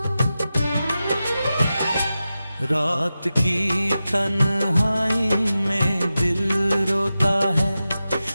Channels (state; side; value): inverted; both; correlation -0.93